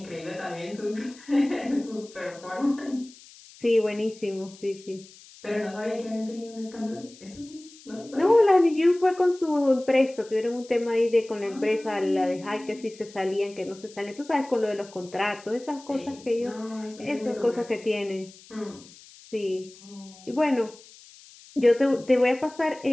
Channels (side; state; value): left; noise; hiss, 22 dB below the sound